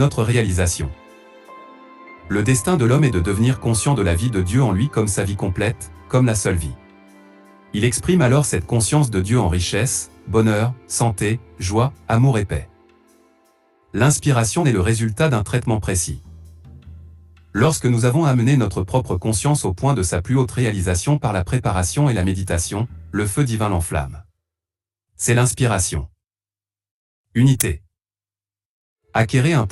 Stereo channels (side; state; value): both; identical; correlation 1.00